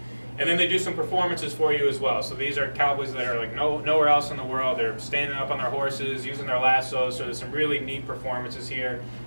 And then they do some performances for you as well. So these are cowboys that are like nowhere else in the world. They're standing up on their horses, using their lassos. So there's some really neat performances here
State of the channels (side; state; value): both; inverted; correlation -1.00